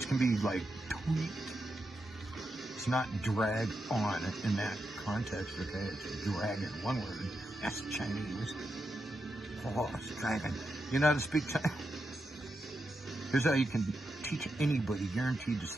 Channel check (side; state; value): both; normal; correlation 0.86